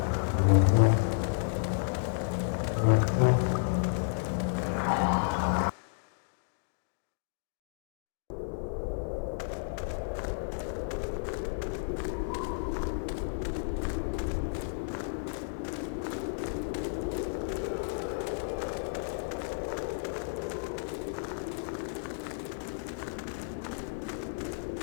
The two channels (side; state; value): right; silent; digital silence